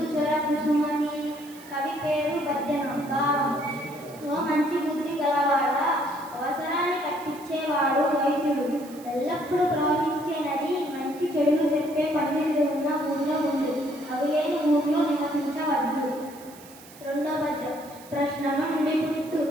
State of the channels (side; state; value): right; noise; hiss, 21 dB below the sound